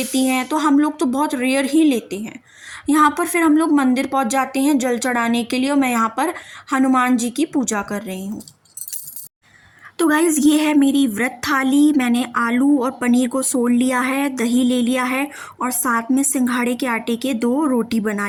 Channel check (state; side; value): identical; both; correlation 1.00